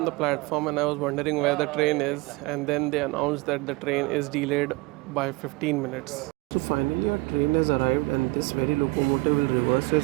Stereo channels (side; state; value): left; quieter; 23.2 dB